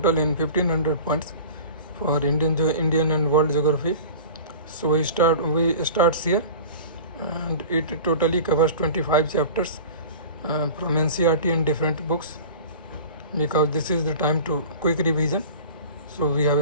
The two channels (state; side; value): inverted; both; correlation -0.38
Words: in 1500 points for Indian and world geography. So we starts here, and it totally covers 25 chapters from NCERT and different books, because this is the time to quick revision. So we